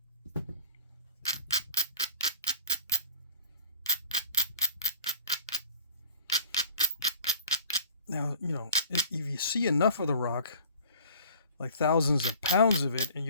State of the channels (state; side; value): inverted; both; correlation -0.49